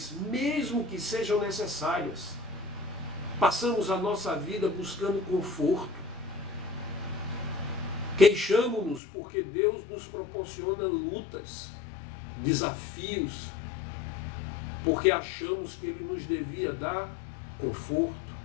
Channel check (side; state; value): right; drops out; at 9.0 s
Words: mesmo que sejam necessárias. Passamos a nossa vida buscando conforto. Queixamo-nos porque Deus nos proporciona lutas, desafios, porque achamos que Ele nos devia dar conforto.